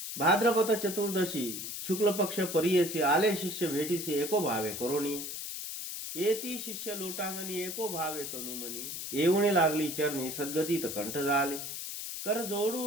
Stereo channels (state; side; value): noise; left; hiss, 6 dB below the sound